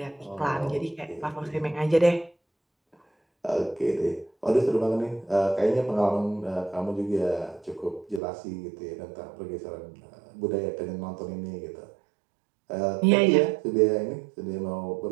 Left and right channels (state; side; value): drops out; left; at 8.2 s